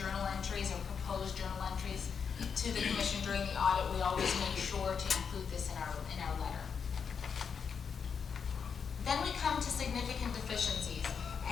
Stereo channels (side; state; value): right; quieter; 6.4 dB